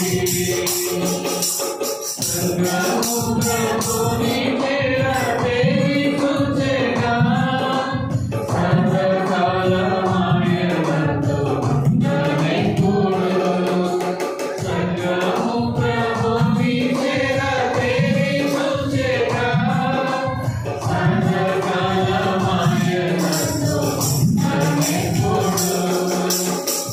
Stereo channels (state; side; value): identical; both; correlation 1.00